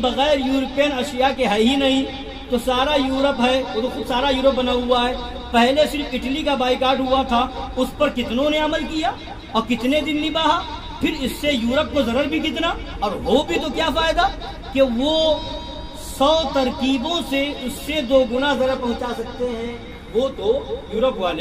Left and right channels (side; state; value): both; identical; correlation 1.00